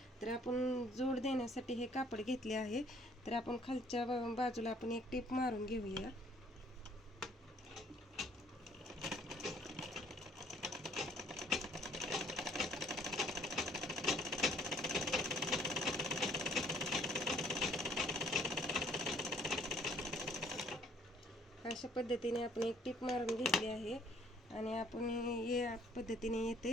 तर आपण जोड देण्यासाठी हे कापड घेतले आहे. तर आपण खालच्या बाजूला आपण एक टीप मारून घेऊया. अशा पद्धतीने आपण एक टीप मारून घेतली आहे आणि आपण या पद्धतीने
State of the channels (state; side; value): normal; both; correlation 0.61